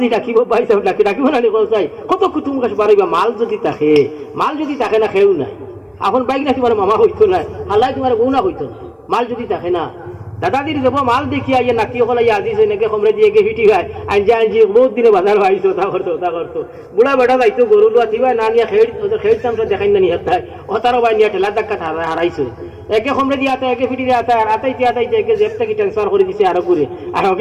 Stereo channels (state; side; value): identical; both; correlation 1.00